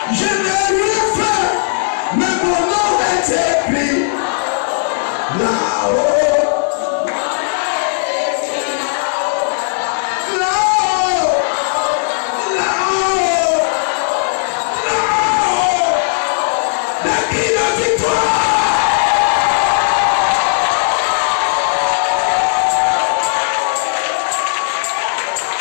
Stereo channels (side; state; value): right; silent; digital silence